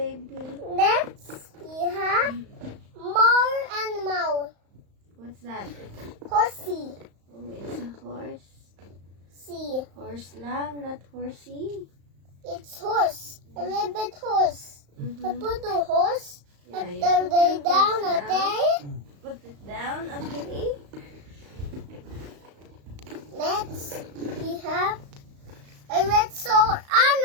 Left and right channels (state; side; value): late; left; 35 ms